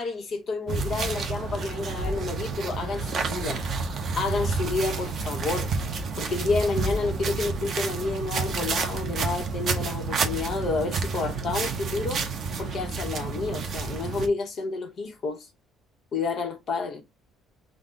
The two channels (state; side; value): normal; both; correlation 0.66